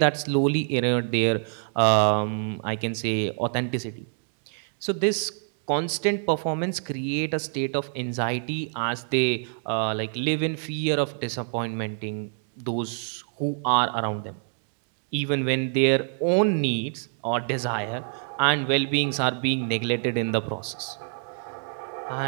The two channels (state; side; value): silent; left; 61 dB below the other